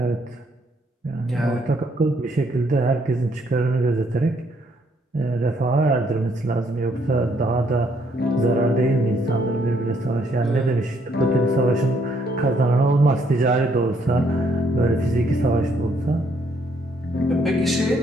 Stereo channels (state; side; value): normal; both; correlation 0.69